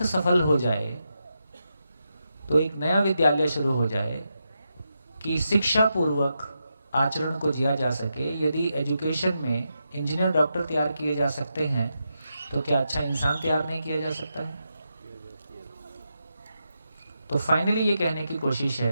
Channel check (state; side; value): inverted; both; correlation -0.85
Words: सफल हो जाए, तो एक नया विद्यालय शुरू हो जाए कि शिक्षा पूर्वक आचरण को जिया जा सके। यदि एजुकेशन में इंजीनियर, डॉक्टर तैयार किए जा सकते हैं, तो क्या अच्छा इंसान तैयार नहीं किया जा सकता है? तो फाइनली ये कहने की कोशिश